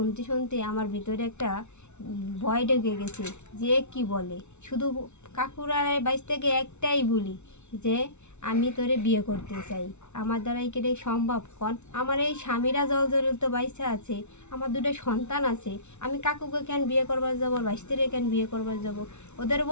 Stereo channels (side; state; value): right; late; 0.82 ms